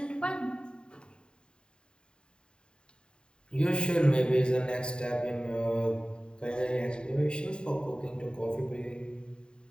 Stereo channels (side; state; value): right; late; 0.050 ms